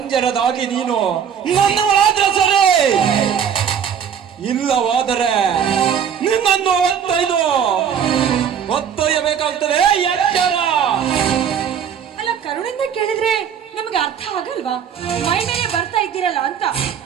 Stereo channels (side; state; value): left; quieter; 8.1 dB